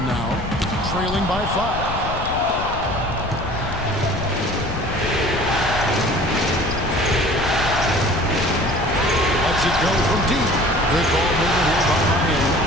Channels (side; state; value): left; noise; rumble, 8 dB below the sound